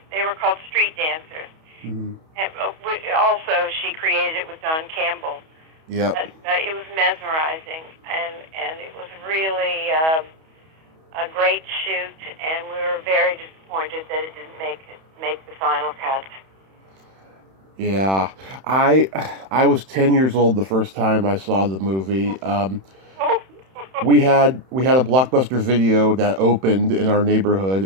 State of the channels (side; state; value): left; late; 31 ms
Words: They were called street dancers. And also, she created it with Don Campbell. Yeah. It was mesmerizing, and it was really a great shoot, and we were very disappointed that it didn't make the final cut. Yeah, I was 10 years old the first time I saw the movie. We had a Blockbuster Video that opened in our neighborhood,